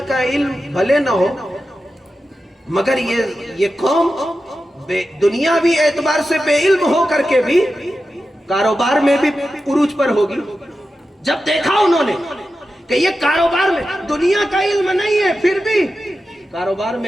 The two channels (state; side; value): normal; both; correlation 0.91